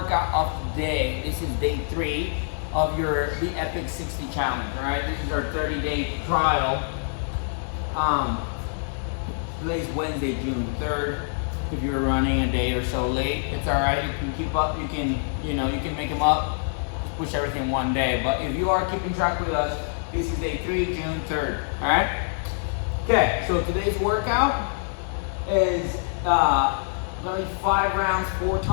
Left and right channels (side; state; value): right; silent; digital silence